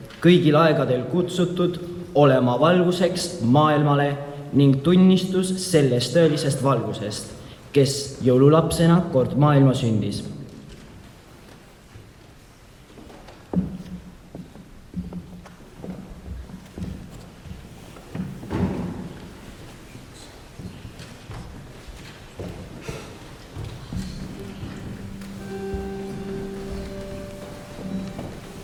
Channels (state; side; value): identical; both; correlation 1.00